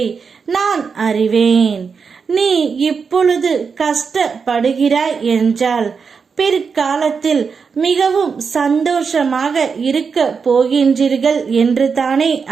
நான் அறிவேன். நீ இப்பொழுது கஷ்டப்படுகிறாய் என்றால் பிற்காலத்தில் மிகவும் சந்தோஷமாக இருக்க போகின்றீர்கள் என்று தானே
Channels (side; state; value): left; quieter; 5.6 dB